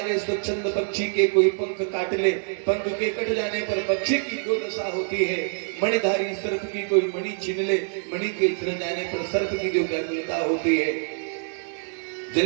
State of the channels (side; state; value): left; silent; digital silence